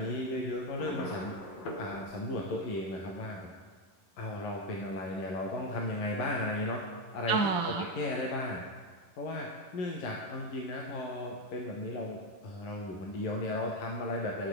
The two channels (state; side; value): late; right; 11 ms